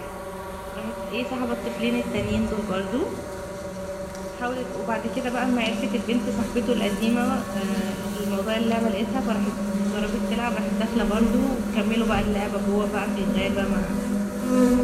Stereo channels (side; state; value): both; identical; correlation 1.00